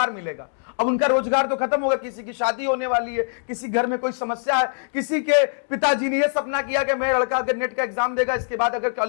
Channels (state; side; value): silent; right; digital silence